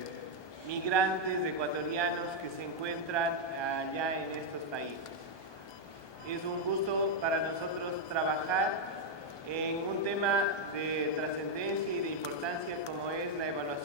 migrantes ecuatorianos que se encuentran allá en estos países. Es un gusto para nosotros trabajar en un tema de trascendencia y de importancia como es la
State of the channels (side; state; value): right; late; 1.2 ms